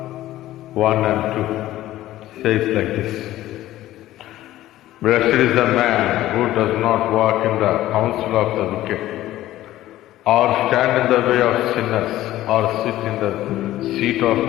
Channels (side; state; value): right; quieter; 14.8 dB